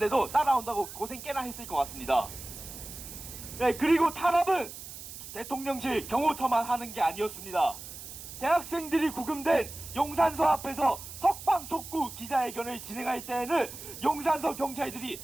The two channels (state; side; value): noise; right; hiss, 12 dB below the sound